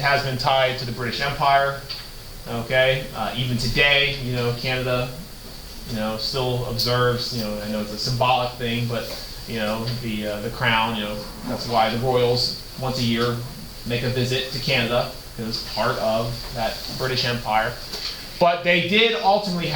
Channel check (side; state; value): both; identical; correlation 1.00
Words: been tied to the British Empire. Okay, even today, Canada. Still observes, I know it's a symbolic thing, but, the crown, that's why the royals once a year make a visit to Canada, because it's part of that British Empire. But they did ultimately